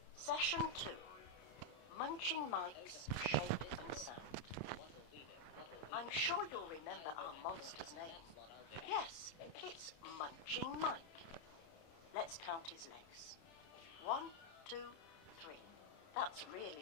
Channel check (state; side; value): late; right; 30 ms